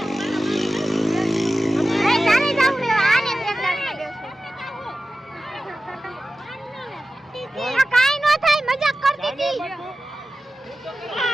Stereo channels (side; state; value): both; normal; correlation 0.95